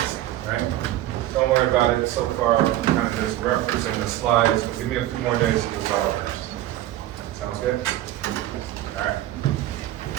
right? Don't worry about it so far. I'm kind of just referencing the slides, but give me a few more days to resolve this. Sounds good?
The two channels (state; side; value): quieter; left; 14.0 dB